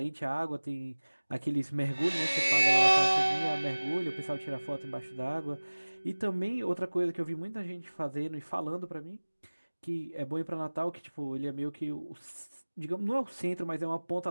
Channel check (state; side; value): inverted; both; correlation -1.00